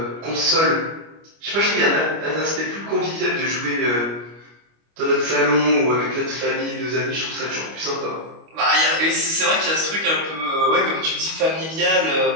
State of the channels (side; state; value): left; late; 25 ms